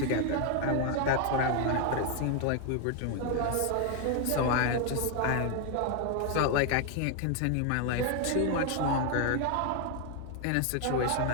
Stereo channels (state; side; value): different; both; correlation 0.01